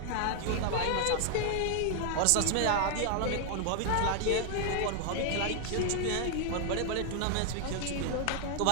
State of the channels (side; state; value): both; different; correlation 0.00